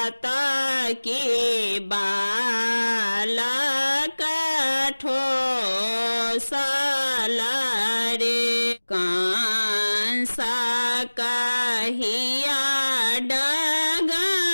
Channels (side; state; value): both; inverted; correlation -1.00